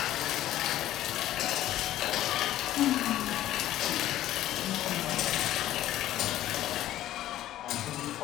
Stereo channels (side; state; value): right; quieter; 13.5 dB